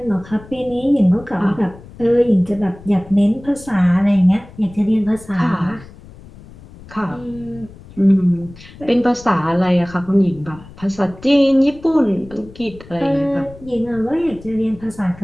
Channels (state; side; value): noise; left; rumble, 20 dB below the sound